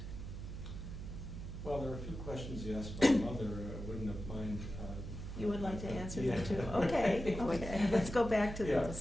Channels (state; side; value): noise; right; hum, 8 dB below the sound